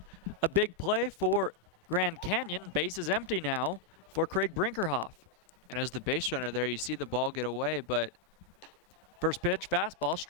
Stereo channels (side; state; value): both; normal; correlation 0.00